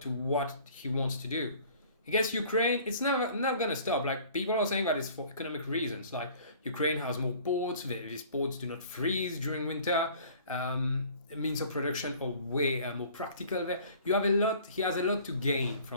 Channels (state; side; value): inverted; both; correlation -0.51